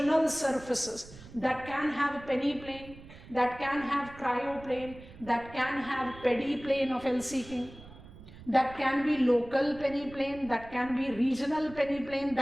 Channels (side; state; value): right; noise; rumble, 18 dB below the sound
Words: surfaces that can have peneplain, that can have cryoplane, that can have pediplane of Helsinki, that can be local peneplane, that can be regional peneplane,